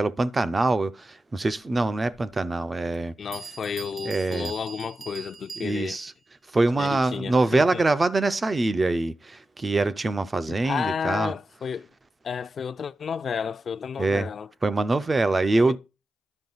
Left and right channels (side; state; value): both; normal; correlation 0.92